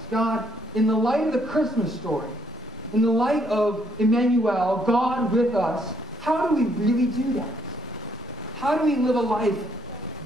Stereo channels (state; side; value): normal; both; correlation 0.70